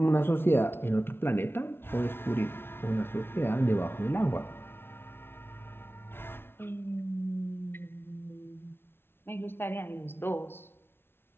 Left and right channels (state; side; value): late; right; 0.11 ms